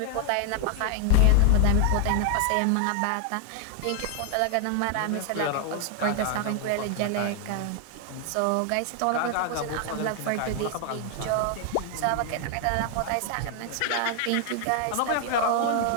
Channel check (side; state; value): both; different; correlation 0.00